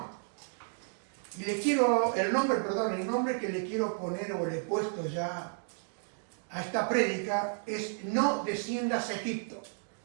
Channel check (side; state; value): left; silent; 56 dB below the other